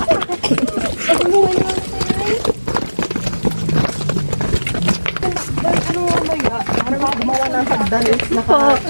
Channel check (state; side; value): inverted; both; correlation -1.00